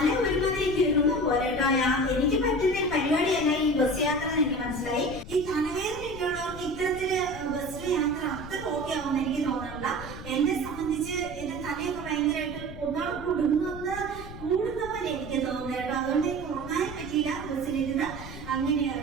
ഒരുമാതിരി കിറങ്ങുന്ന പോലെ കേട്ടോ. എനിക്ക് പറ്റുന്ന പരിപാടിയല്ല ഈ ബസ് യാത്ര എന്ന് എനിക്ക് മനസ്സിലായി. ഈ തലവേദനയൊക്കെ ഉള്ളവർക്ക് ഇത്തരത്തില് ബസ്സിലെ യാത്ര അത്ര ഓക്കെ ആവുമെന്ന് എനിക്ക് തോന്നുന്നില്ല. എന്നെ സംബന്ധിച്ച് എന്റെ തലയൊക്കെ ഭയങ്കരമായിട്ട് ഒന്നാണ് കൂടുന്ന പോലെ എനിക്ക് തോന്നുന്നത് കേട്ടോ. അതുകൊണ്ട് എനിക്ക് ഉറങ്ങാൻ പറ്റിയില്ല ബസ്സിലിരുന്ന്.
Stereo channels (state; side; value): noise; left; rumble, 12 dB below the sound